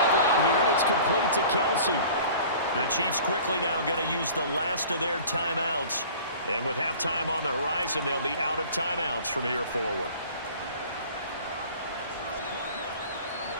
route here, and it's complete to Kelsey. The Chiefs quickly now going to use the last of their timeouts. And with halftime on the horizon, they'll be out of timeouts from here forward.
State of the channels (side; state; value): both; inverted; correlation -0.45